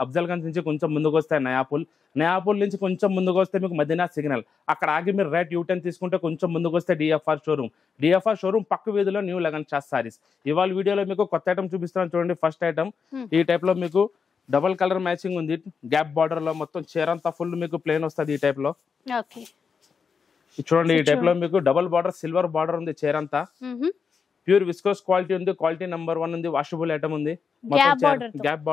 అఫ్జల్గంజ్ నుంచి కొంచెం ముందుకు వస్తే నయాపూల్ నుంచి కొంచెం ముందుకు వస్తే మీకు మదీనా సిగ్నల్, అక్కడ ఆగి మీరు రైట్ యూటర్న్ తీసుకుంటే కొంచెం ముందుకు వస్తే డిఎఫ్ఆర్ షోరూమ్ పక్క వీధిలో న్యూ లగన్ షా సారీస్. ఇవాళ వీడియోలో మీకు కొత్త ఐటమ్ చూపిస్తాను చూడండి. ఫస్ట్ ఐటమ్ ఈ టైప్లో మీకు డబల్ కలర్ మ్యాచింగ్ ఉంది. గ్యాప్ బార్డర్ లో మొత్తం చీరంతా ఫుల్ మీకు ప్లేన్ వస్తుంది. ఈ టైప్ లో చూడండి. ఈ టైప్ లో మీకు డబల్ బార్డర్, సిల్వర్ బార్డర్ ఉంది. చీరంతా ప్యూర్ విస్కోస్ క్వాలిటీ ఉంది. క్వాలిటీ నెంబర్ 1 ఉంది. వాషబుల్ ఐటమ్ ఉంది. మొత్తం గ్యాప్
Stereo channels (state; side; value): quieter; right; 5.9 dB